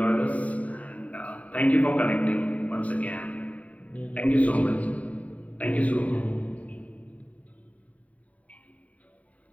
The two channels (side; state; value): right; late; 0.069 ms